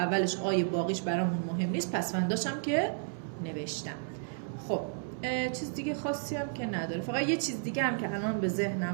آی، باقیش برامون مهم نیست. پسونداشم که نوشتم. خب چیز دیگه خاصی هم که نداره. فقط یه چیز دیگه هم که الان به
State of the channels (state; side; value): silent; left; digital silence